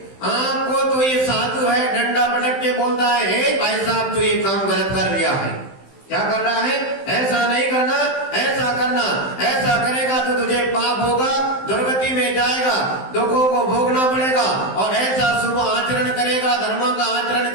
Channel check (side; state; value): right; late; 15 ms